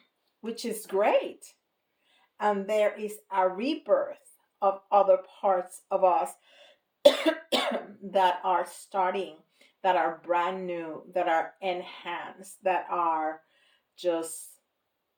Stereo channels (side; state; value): both; identical; correlation 1.00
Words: which is great. And there is a rebirth of other parts of us that are starting, that are brand new, that are enhanced, that are just